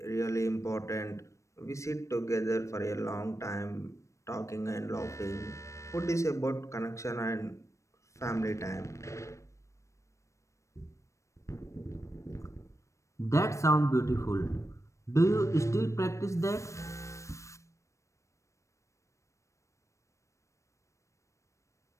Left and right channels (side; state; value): right; late; 0.15 ms